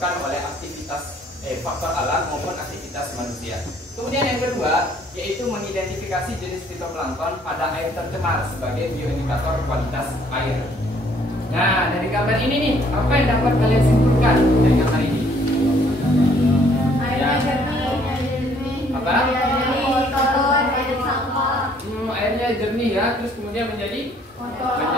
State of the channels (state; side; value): normal; both; correlation 0.63